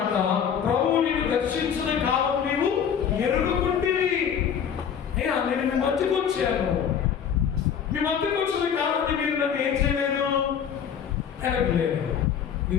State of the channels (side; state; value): right; quieter; 7.9 dB